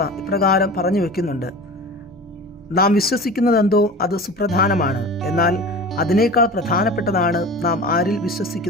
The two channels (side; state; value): both; normal; correlation 0.35